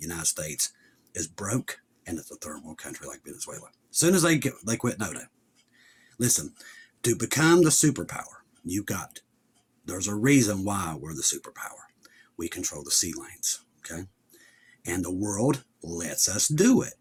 United States is broke, and it's a third world country like Venezuela. As soon as they quit NATO. Listen, to become the superpower, there's a reason why we're the superpower. We control the sea lanes, okay? And the world lets us do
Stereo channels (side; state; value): both; identical; correlation 1.00